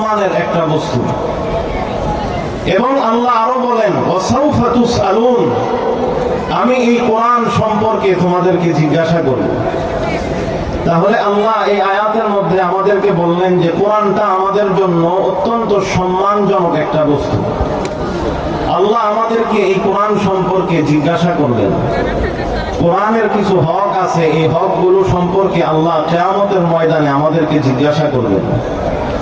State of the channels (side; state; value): both; identical; correlation 1.00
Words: একটা বস্তু। এবং আল্লাহ আরো বলেন, ওয়াসাউফা তুসআলুন, আমি এই কোরআন সম্পর্কে তোমাদেরকে জিজ্ঞাসা করব। তাহলে আল্লাহ এই আয়াতের মধ্যে আমাদেরকে বললেন যে কোরআনটা আমাদের জন্য অত্যন্ত সম্মানজনক একটা বস্তু। আল্লাহ আমাদেরকে এই কোরআন সম্পর্কে জিজ্ঞাসা করবেন। কোরআনের কিছু হক আছে, এই হকগুলো সম্পর্কে আল্লাহ কিয়ামতের ময়দানে আমাদেরকে জিজ্ঞাসা করবেন।